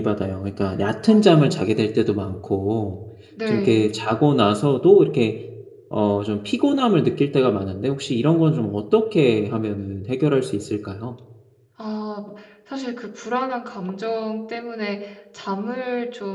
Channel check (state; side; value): identical; both; correlation 1.00